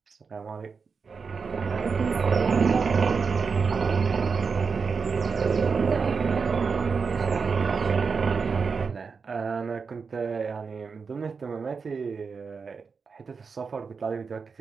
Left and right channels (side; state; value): left; quieter; 5.2 dB